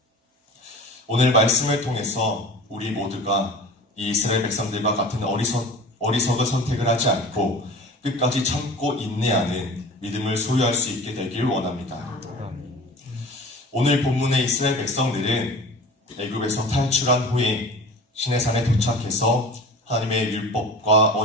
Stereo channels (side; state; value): both; normal; correlation 0.39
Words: 오늘 말씀을 통해서 우리 모두가 이 이스라엘 백성들과 같은 어리석은 선택을 하지 않고 끝까지 참고 인내하는 믿음을 소유할 수 있게 되길 원합니다. 오늘 본문의 이스라엘 백성들은 애굽에서 탈출한 후에 시내산에 도착해서 하나님의 율법과